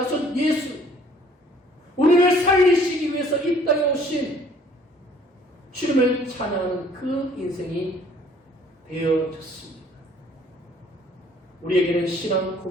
예수, 우리를 살리시기 위해서 이 땅에 오신 주님을 찬양하는 그 인생이 되어졌습니다. 우리에게는 신앙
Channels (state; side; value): normal; both; correlation 0.58